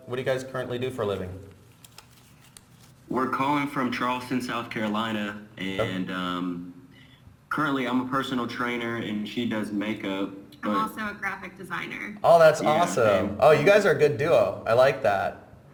guys currently do for a living? We're calling from Charleston, South Carolina, and currently I'm a personal trainer, and she does makeup. I'm also a graphic designer. Oh, that's awesome. Oh, you guys are a good duo. I like that.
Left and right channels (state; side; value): identical; both; correlation 1.00